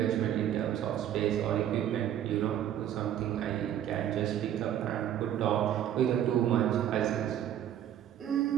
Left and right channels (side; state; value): left; quieter; 10.8 dB